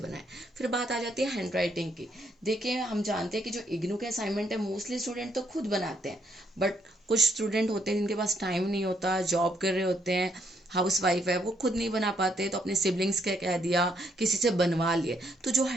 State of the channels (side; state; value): both; normal; correlation 0.73